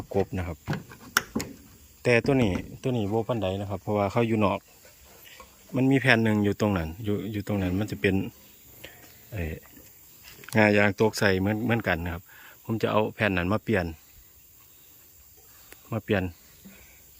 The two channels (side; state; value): both; identical; correlation 1.00